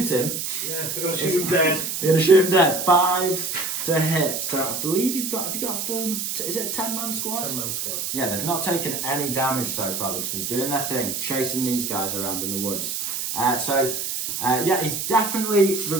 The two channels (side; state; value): right; noise; hiss, 3 dB below the sound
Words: him. Yeah, they're going to shoot him dead. They're going to shoot him dead. 5s to hit. So I believe have you got a full, is it a 10-man squad? 10-man squad. Yeah, they've not taken any damage so far. They've just been doing their thing, chasing these guys around in the woods. He's definitely